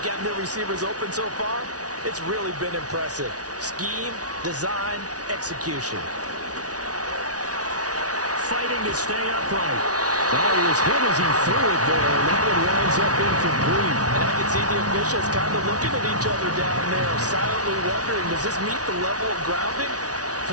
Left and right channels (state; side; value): late; left; 0.68 ms